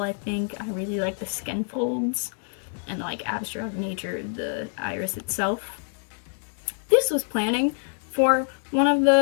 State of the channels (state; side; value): silent; right; 61 dB below the other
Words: I think. I really like the skin folds and like abstract nature of the iris itself. This was planning for one of